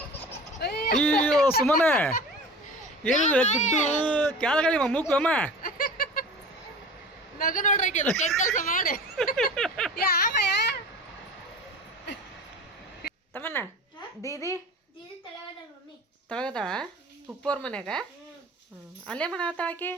ಅಯ್ಯೋ ಸುಮ್ಮನೆ ಏನಿದೆ ಗುಡ್ಡು ಕ್ಯಾಲಗಳಿ ಮೂಕು ಅಮ್ಮ ನಗು ನೋಡ್ರಿ ಕೆಲಸ ಮಾಡಿ ತಮ್ಮನ್ನ ದೀದಿ ತಳಗದಾಳ ಉಪ್ಪೋರ್ ಮನ್ಯಾಗ. ಅಲ್ಲೇ ಮಾಡತ್ತಾಳ ಆಕಿ.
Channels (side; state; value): both; normal; correlation 0.37